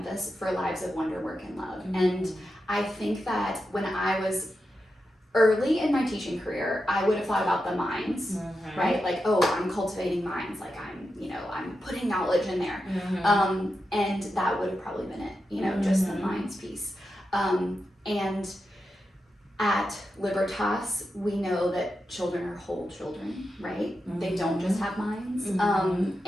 for lives of wonder, work, and love. And I think that when I was early in my teaching career, I would have thought about the minds, right? Like, oh, I'm cultivating minds, like I'm putting knowledge in there. And that would have probably been it, just the minds piece. And at Libertas, we know that children are whole children, right? They don't just have minds.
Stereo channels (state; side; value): normal; both; correlation 0.88